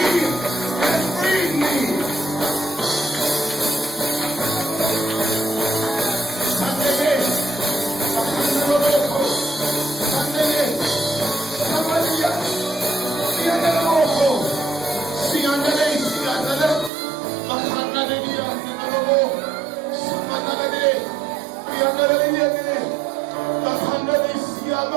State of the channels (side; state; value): left; drops out; at 16.9 s